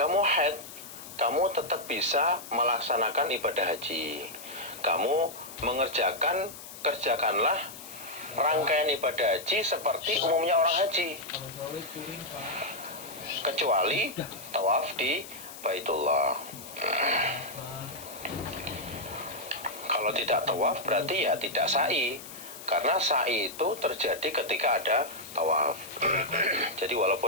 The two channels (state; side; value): noise; left; hiss, 14 dB below the sound